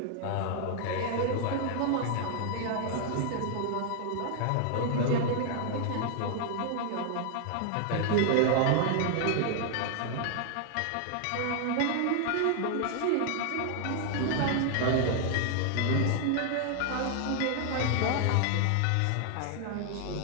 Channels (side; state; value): both; different; correlation 0.00